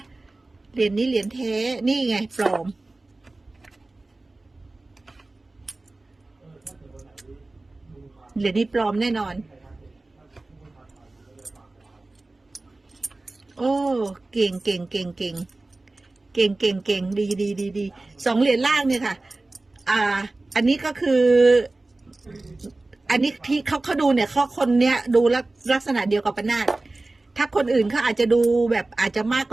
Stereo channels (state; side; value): quieter; left; 3.1 dB